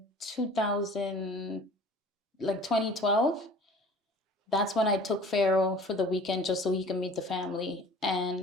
2012. That's when I took Pharaoh for the weekend just so he can meet the family.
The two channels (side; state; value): both; normal; correlation 0.46